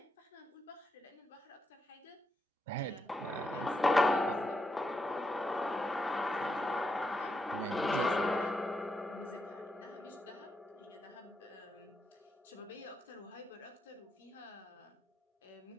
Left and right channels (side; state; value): both; normal; correlation 0.83